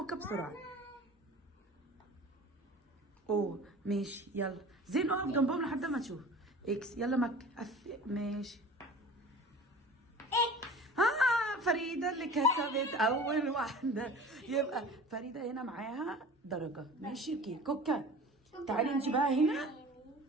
بسرعه. اوه ماشي يلا زين اقف جنبهم لحد ما تشوف اكس. يلا مكه ماشي اكس. فريده اللي كسبت اول واحده. يبقى فريده هنا معاها درجه. ماشي اوكي كوكا تعالي انت بقى هنا.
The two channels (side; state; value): both; normal; correlation 0.40